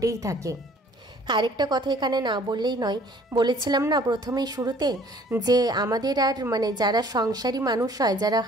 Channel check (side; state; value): both; normal; correlation 0.55